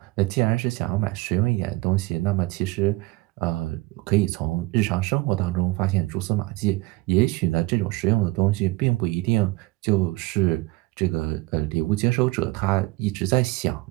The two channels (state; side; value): quieter; left; 21.2 dB